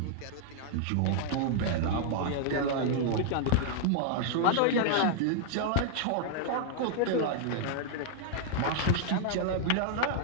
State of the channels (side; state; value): both; different; correlation -0.01